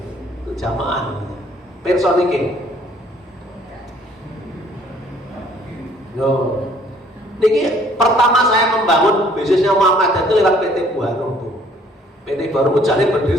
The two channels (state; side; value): normal; both; correlation 0.60